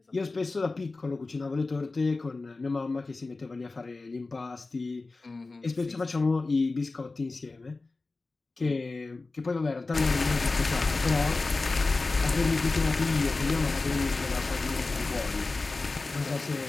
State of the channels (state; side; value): quieter; right; 3.6 dB